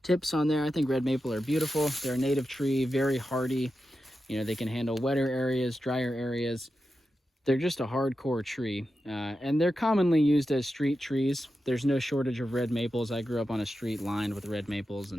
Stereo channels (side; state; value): both; normal; correlation 0.90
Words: tips on there. I think red maple are beautiful. They're a native tree, very hardy. They can handle wetter areas, drier areas. They're just a hardcore tree, and they're commonly used as street trees. There's no shortage of red maples. I grew up on a street lined with red maples,